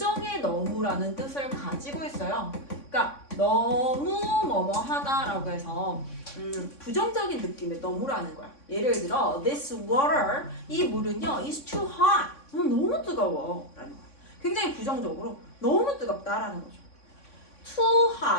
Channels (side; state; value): right; late; 3.6 ms